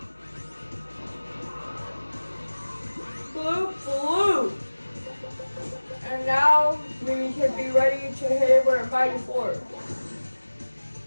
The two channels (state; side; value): inverted; both; correlation -1.00